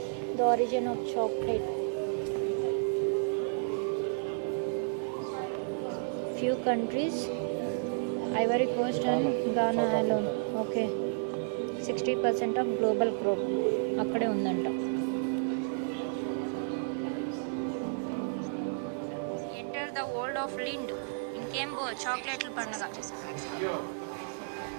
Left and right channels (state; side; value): silent; left; digital silence